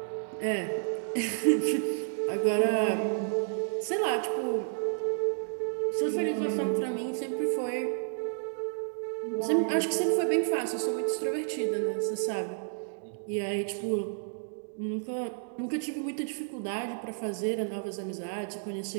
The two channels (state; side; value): silent; left; digital silence